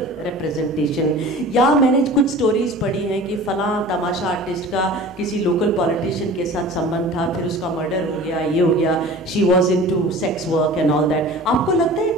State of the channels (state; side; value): normal; both; correlation 0.40